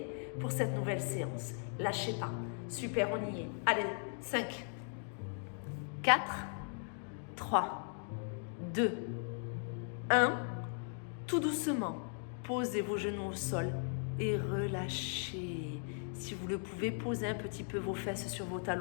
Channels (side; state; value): right; silent; 52 dB below the other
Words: pour cette nouvelle séance. Lâchez pas. Super, on y est. Allez, 5, 4, 3, 2, 1. Tout doucement, posez vos genoux au sol et relâchez. Si vous le pouvez, posez un petit peu vos fesses sur vos